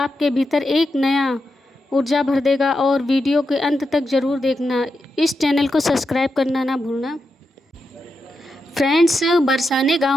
भीतर एक नया ऊर्जा भर देगा। और वीडियो के अंत तक ज़रूर देखना। इस चैनल को सब्सक्राइब करना ना भूलना। फ्रेंड्स, बरसाने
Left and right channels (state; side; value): normal; both; correlation 0.87